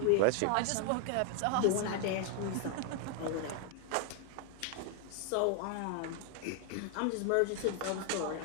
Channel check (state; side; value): different; both; correlation 0.00